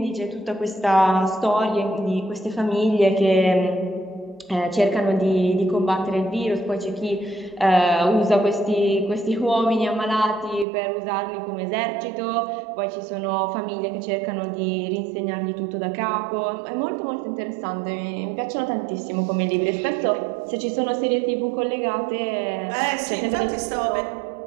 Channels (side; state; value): left; drops out; at 10.7 s